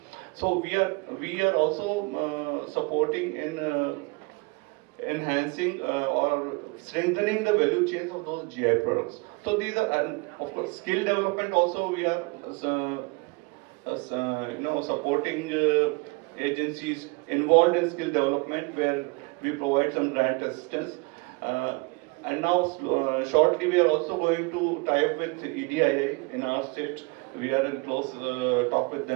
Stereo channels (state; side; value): quieter; left; 28.3 dB